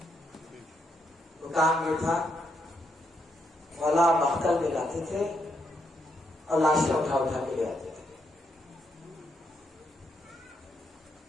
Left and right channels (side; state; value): both; normal; correlation 0.78